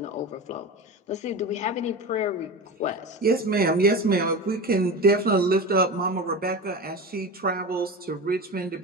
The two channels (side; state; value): both; normal; correlation 0.27